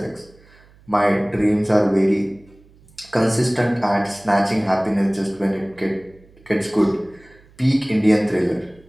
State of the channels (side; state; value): right; noise; hum, 28 dB below the sound